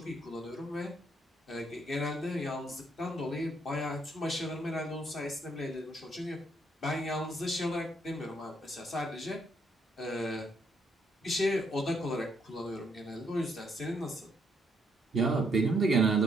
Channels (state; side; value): normal; both; correlation 0.72